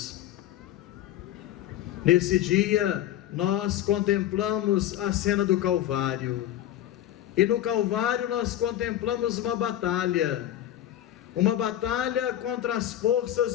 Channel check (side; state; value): right; quieter; 12.5 dB